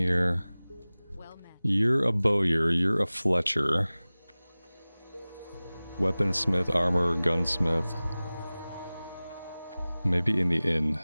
Well met. You're a bowyer, you're a Fletcher. Weaponsmith, armor, gunsmith. Maybe in the inn.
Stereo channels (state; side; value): inverted; both; correlation -0.98